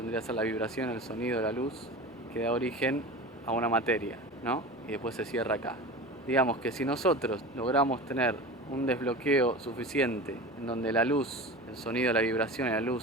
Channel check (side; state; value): both; normal; correlation 0.32